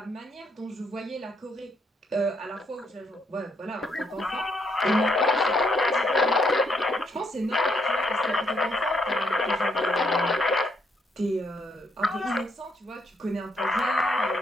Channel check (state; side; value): normal; both; correlation 0.73